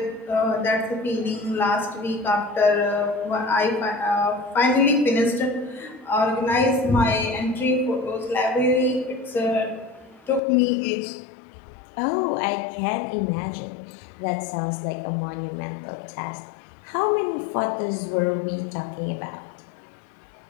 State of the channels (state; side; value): drops out; right; at 10.4 s